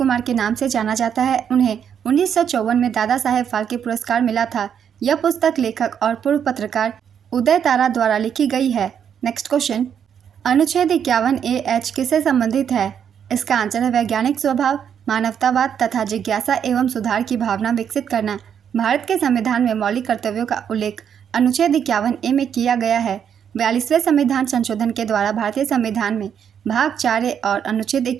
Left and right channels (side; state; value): left; quieter; 8.2 dB